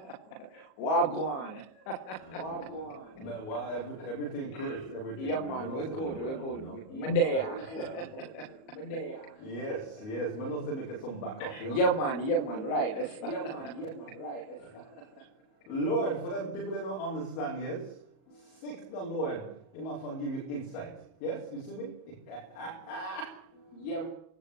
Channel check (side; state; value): right; late; 38 ms